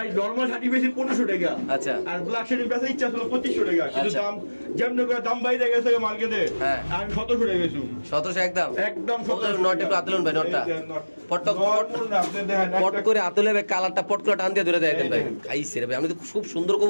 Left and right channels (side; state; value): both; inverted; correlation -1.00